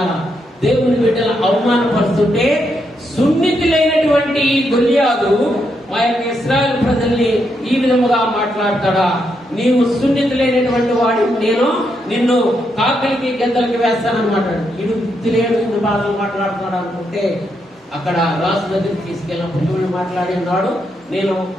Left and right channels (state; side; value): normal; both; correlation 0.80